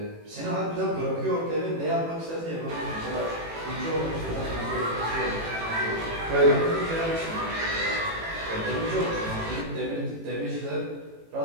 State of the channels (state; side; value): late; left; 18 ms